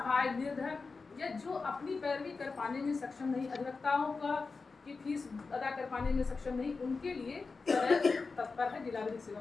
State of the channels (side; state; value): right; quieter; 4.3 dB